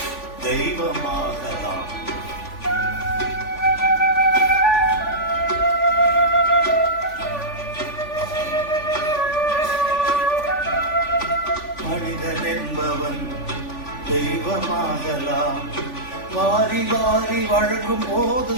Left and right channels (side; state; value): right; late; 3.5 ms